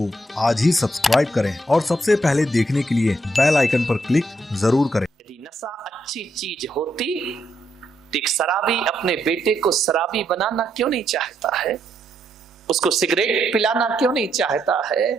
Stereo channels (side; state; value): both; normal; correlation 0.77